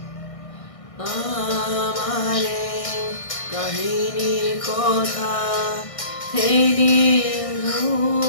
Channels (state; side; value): late; right; 1.6 ms